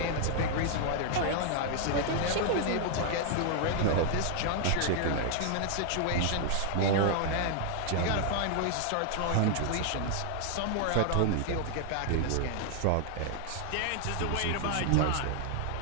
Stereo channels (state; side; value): different; both; correlation 0.00